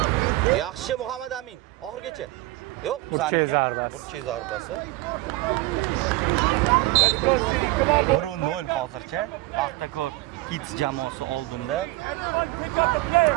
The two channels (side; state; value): left; quieter; 19.4 dB